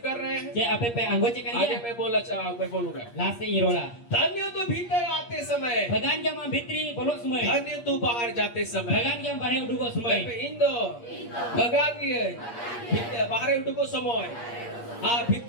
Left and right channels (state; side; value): late; right; 8.5 ms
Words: कर रहे हैं जे आपे पे अंगोची आगे करिया मैं बोलूंगा लास्ट से इरोला धन्य तो भीतर आते समय भगान गया मा भित्री बोलो समय धन्य तू बाहर जाते समय भगान गया बाहर उडुगो समय इंदो भगान गए बाहर उठको समय हाँ